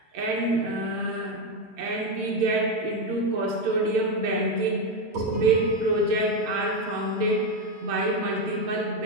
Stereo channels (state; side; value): late; left; 9.0 ms